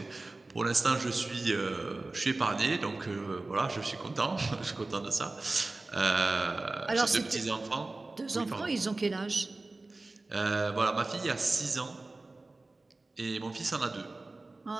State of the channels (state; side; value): quieter; left; 3.2 dB